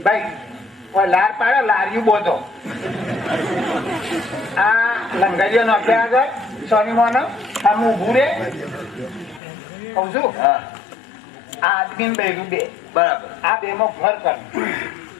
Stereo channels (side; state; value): right; drops out; at 9.4 s